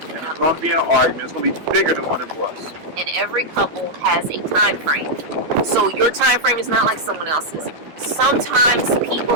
it's gonna be an argument. It's gonna be bigger than what it was. And every couple has a time frame. So your time frame is not like someone else's. Sometimes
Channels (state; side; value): late; left; 12 ms